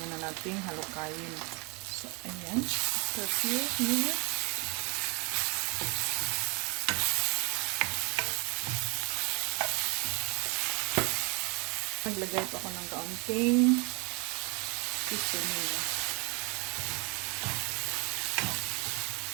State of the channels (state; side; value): quieter; left; 30.5 dB